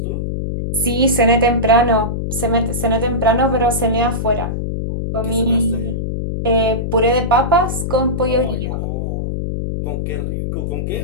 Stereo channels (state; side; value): noise; left; hum, 2 dB below the sound